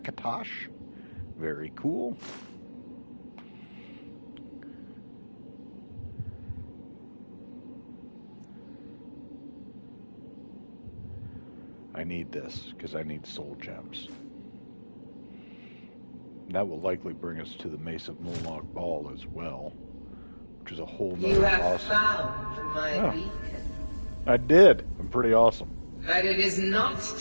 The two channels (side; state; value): both; inverted; correlation -1.00